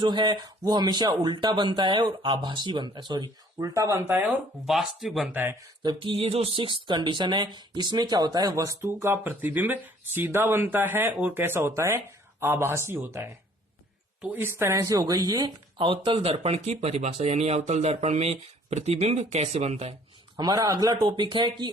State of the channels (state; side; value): normal; both; correlation 0.57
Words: है वो हमेशा उल्टा बनता है और आभासी बनता है, उल्टा बनता है और वास्तविक बनता है। जबकि ये जो 6th कंडीशन है इसमें क्या होता है, वस्तु का प्रतिबिंब सीधा बनता है और कैसा होता है, आभासी होता है। तो इस तरह से हो गई ये अवतल दर्पण की परिभाषा, यानी अवतल दर्पण में प्रतिबिंब कैसे बनता है। हमारा अगला टॉपिक है कि